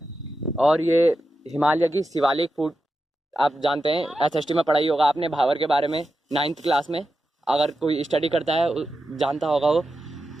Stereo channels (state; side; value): normal; both; correlation 0.89